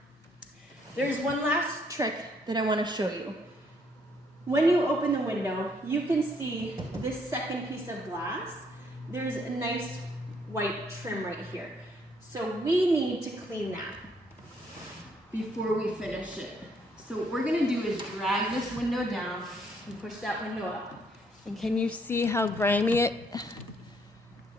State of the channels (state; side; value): normal; both; correlation 0.69